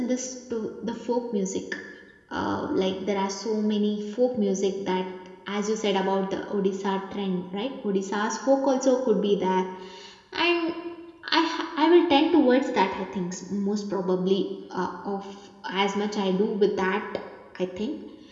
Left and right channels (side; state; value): both; identical; correlation 1.00